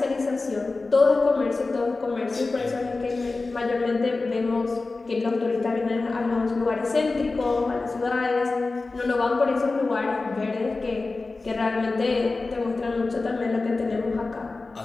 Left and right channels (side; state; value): right; quieter; 3.6 dB